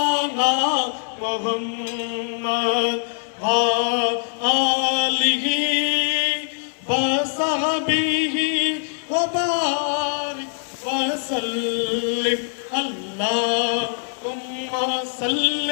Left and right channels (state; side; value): silent; right; digital silence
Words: محمد وآله وصحبه وبارك وسلم اللهم صل